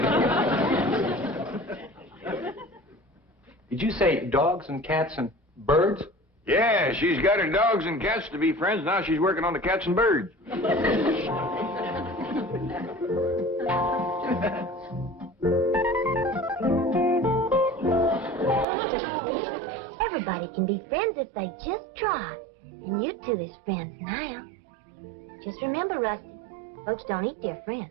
you. Did you say dogs and cats and birds? Yeah, she's got her dogs and cats to be friends. Now she's working on the cats and birds. Everybody can be friends if they just try. And you two is friends now. Just remember, Rusty, folks don't eat their friends.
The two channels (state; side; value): drops out; left; at 18.7 s